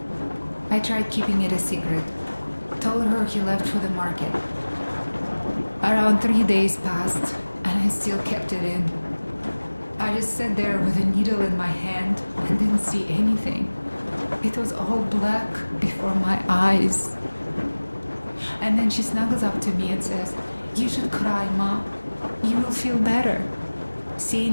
I tried keeping it a secret. Told her he left for the market. Around 3 days passed, and I still kept it in. I just sat there with a needle in my hand and didn't see anything. It was all black before my eyes. And then she snuggles up to me and says, "You should cry, Ma. You will feel better."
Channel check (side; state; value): both; inverted; correlation -1.00